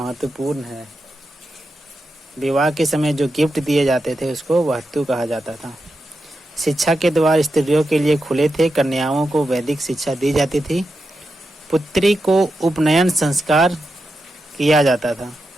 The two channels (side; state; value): both; normal; correlation 0.88